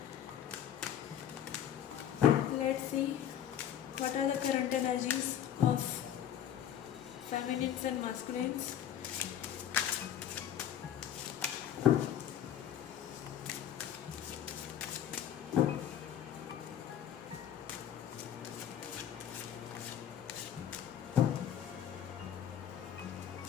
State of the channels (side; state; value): right; quieter; 10.1 dB